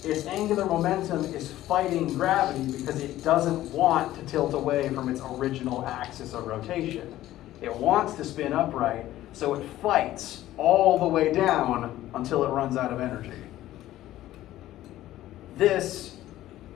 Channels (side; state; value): right; quieter; 14.4 dB